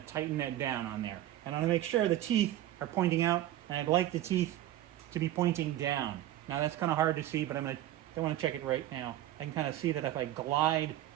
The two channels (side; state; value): left; quieter; 13.6 dB